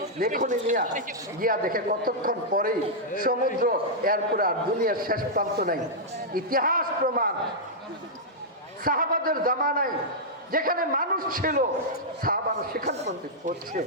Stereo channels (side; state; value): both; normal; correlation -0.08